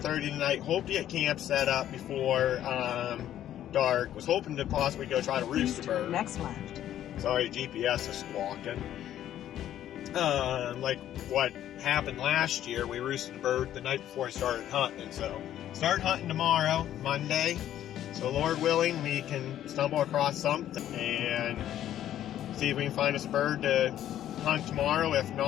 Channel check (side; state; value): right; quieter; 11.7 dB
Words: tonight. Hope to get camp set up before dark. Was hoping to possibly go try to roost a bird. Next left. Sorry, GPS is squawking. Like what happened last year, we roosted a bird the night before I started hunting. So start hunting tomorrow, Monday. So Lord willing, we can stumble across something and see if we can find us a bird to hunt tomorrow. If